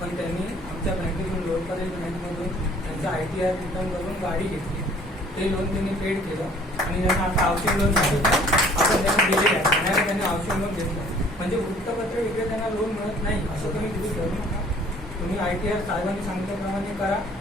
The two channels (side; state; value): both; normal; correlation 0.55